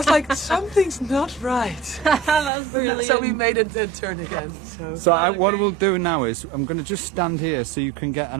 like, something's not right. That's brilliant. So we made it then turn again. So What we'll do now is I'm going to just stand here so you can get an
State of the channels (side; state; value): left; drops out; at 2.5 s